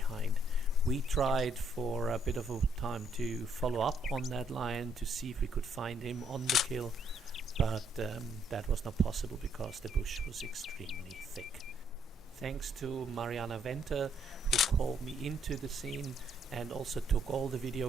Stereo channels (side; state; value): both; normal; correlation 0.70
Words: We tried for a bit of a time to follow up on that lion to see if we could find him on the kill, but that was not possible because the bush was extremely thick. Thanks to Mariana who called me into the scene and also took all the video